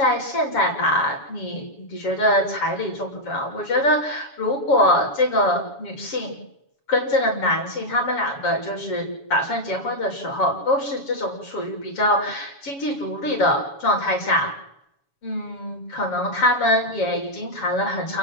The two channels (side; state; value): right; late; 7.1 ms